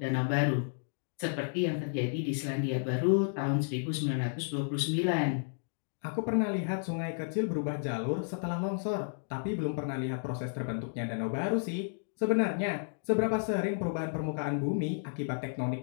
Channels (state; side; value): silent; right; digital silence